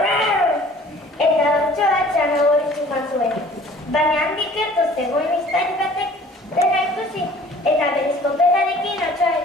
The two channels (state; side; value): normal; both; correlation 0.50